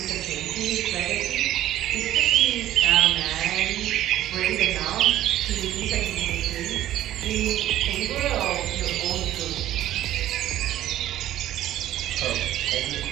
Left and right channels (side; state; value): left; quieter; 13.2 dB